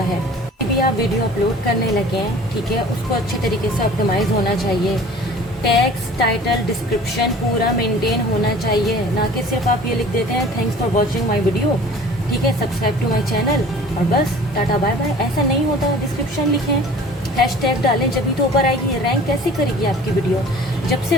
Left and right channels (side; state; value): both; normal; correlation 0.46